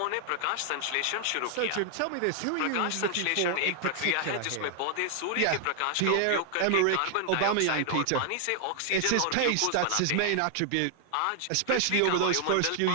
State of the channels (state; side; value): different; both; correlation 0.00